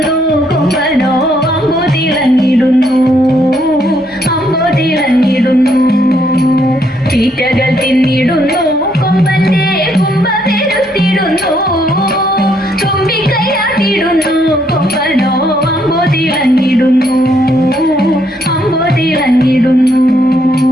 കൊമ്പനോ അമ്പോ തിളങ്ങിടുന്നു അമ്പോ തിളങ്ങിടുന്നു തീറ്റകൾ തിന്നിടുന്നു കൊമ്പന്റെ കൊമ്പമെരുത്തിടുന്നു തുമ്പിക്കൈയാട്ടിടുന്നു കൊമ്പനോ അമ്പോ തിളങ്ങിടുന്നു അമ്പോ തിളങ്ങിടുന്നു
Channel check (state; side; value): normal; both; correlation 0.72